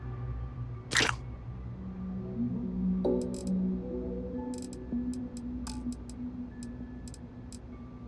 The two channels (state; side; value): identical; both; correlation 1.00